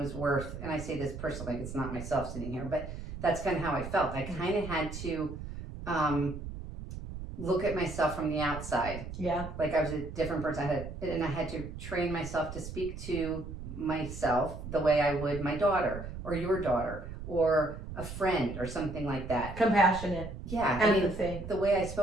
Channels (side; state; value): right; noise; rumble, 9 dB below the sound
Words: worth, and I say this person like it's not myself sitting here, but that's kind of how I felt. I kind of had to look at myself from the outside. Yeah. Like I was a different person. I had to train myself to speak to myself the way I would my daughter or your daughter or a friend or something like that. Compassionate. Yeah. Empathy. The way I